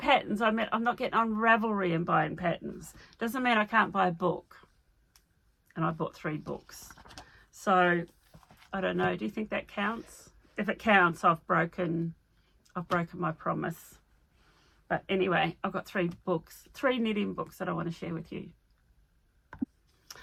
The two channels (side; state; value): both; identical; correlation 1.00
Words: I meant I'm not getting on Ravelry and buying patterns. Doesn't mean I can't buy a book. And I bought 3 books. So I don't know. Do you think that counts? If it counts, I've broken my promise. But anyway, I've got 3 books, 3 knitting books that I want to share with you.